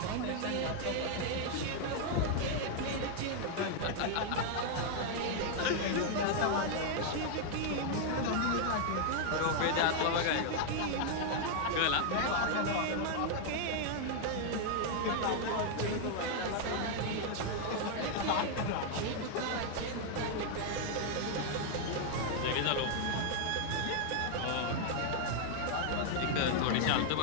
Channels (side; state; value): both; different; correlation 0.00